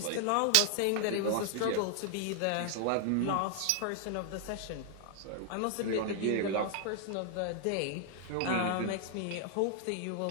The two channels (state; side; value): different; both; correlation 0.00